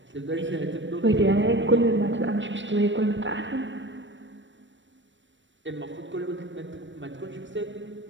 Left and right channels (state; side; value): late; left; 0.54 ms